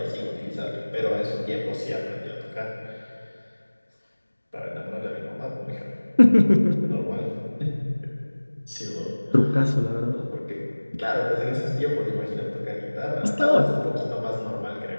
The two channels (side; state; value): both; inverted; correlation -1.00